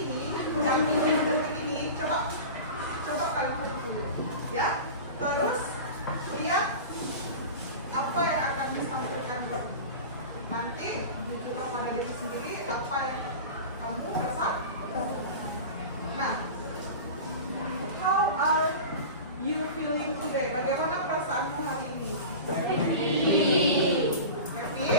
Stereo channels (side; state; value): both; inverted; correlation -0.31